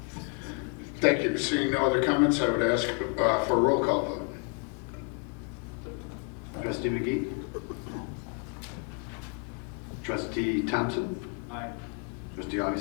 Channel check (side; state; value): right; quieter; 35.3 dB